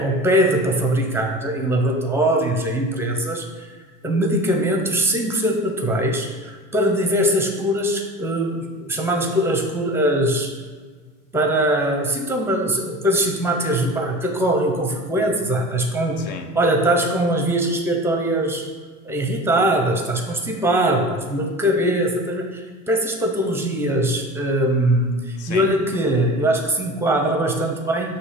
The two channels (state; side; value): normal; both; correlation 0.36